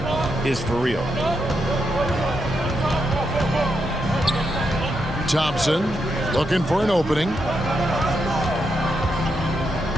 is for real. Thompson looking for an opening.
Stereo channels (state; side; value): normal; both; correlation 0.83